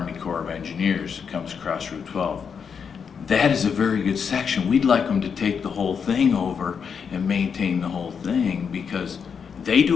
Corps of Engineers. It comes across Route 12. That is a very good section. We'd like them to take the whole thing over and maintain the whole thing, because they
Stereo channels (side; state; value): right; quieter; 6.6 dB